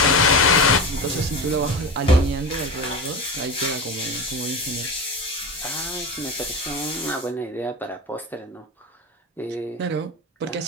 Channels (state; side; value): normal; both; correlation 0.25